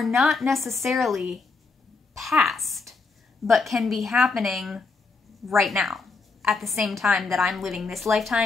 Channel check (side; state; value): right; quieter; 4.2 dB